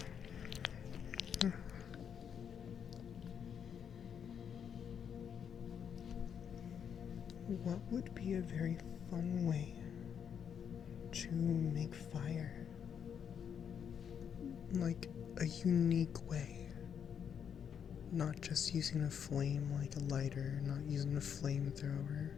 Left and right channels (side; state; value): right; quieter; 7.9 dB